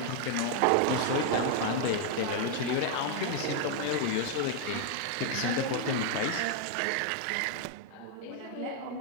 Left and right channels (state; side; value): different; both; correlation 0.00